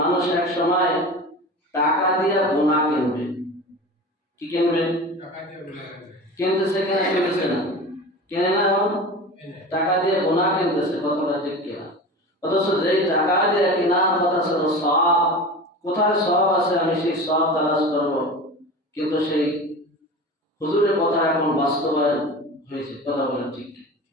মানুষ এক সময় টাকা দিয়ে গুনাহ কিনবে। কি কিনবে? কিনতেছে কিনা? কিনতেছে না? কেনে না? টাকা দিয়ে গুনাহ কিনতেছে, কথাটা ঠিক কিনা? অথচ যেই টাকা দিয়ে কিনা কথা ছিল সওয়াব, কোথায় সওয়াব আছে আমি সেই সওয়াব তালাশ করব, কিন্তু সেই হুজুরের কথা এখন বাস্তবায়ন হয়েছে, কথা বলেন ঠিক।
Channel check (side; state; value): both; normal; correlation 0.32